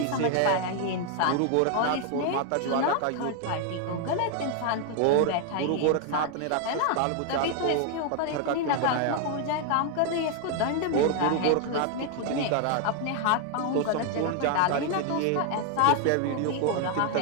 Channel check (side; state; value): both; different; correlation 0.00